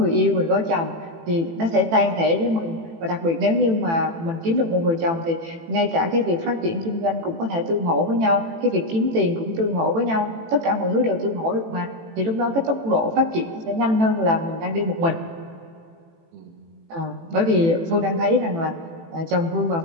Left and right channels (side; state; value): left; late; 18 ms